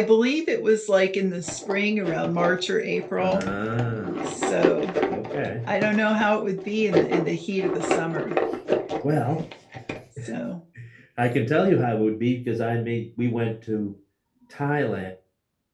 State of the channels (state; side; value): identical; both; correlation 1.00